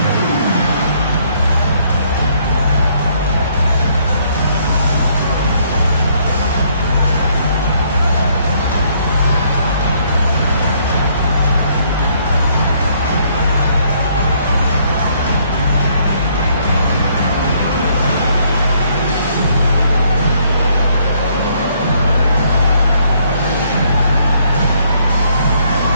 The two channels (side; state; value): both; inverted; correlation -0.67